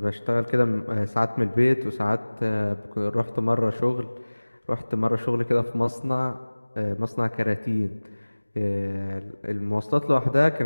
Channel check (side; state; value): both; inverted; correlation -1.00